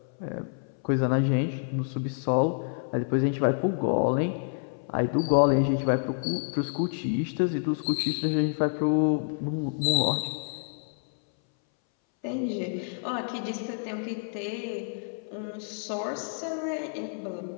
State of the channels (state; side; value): silent; right; 59 dB below the other